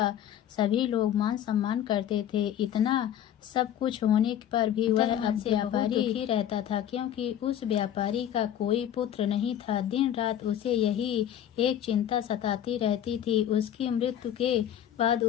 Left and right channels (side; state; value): right; quieter; 10.4 dB